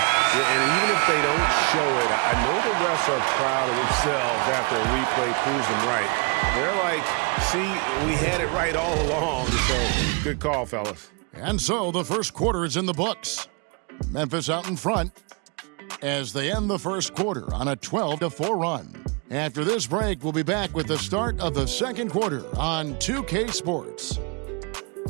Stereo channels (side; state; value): left; quieter; 33.1 dB